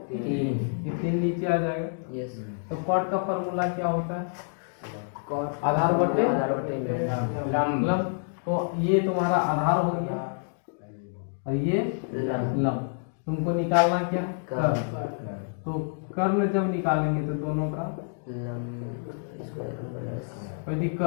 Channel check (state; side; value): silent; right; digital silence